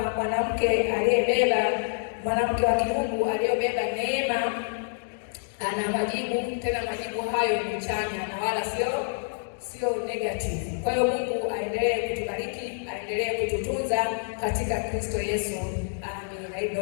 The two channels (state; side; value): silent; right; digital silence